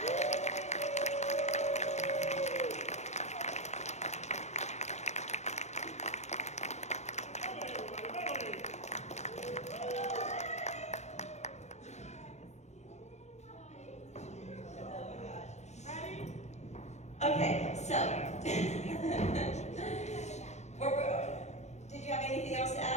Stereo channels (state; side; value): late; right; 0.33 ms